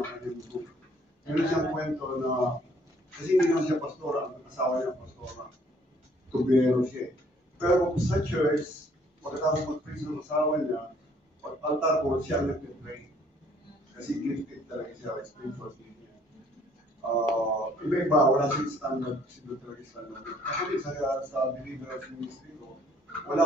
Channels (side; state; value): both; normal; correlation 0.62